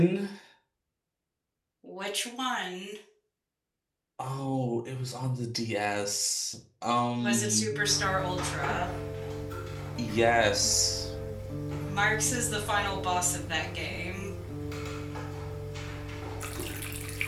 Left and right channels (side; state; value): both; identical; correlation 1.00